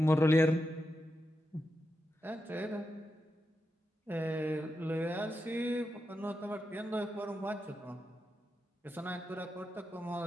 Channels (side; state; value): both; normal; correlation 0.87